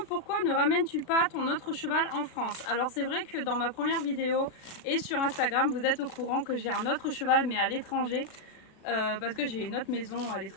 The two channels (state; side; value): late; right; 36 ms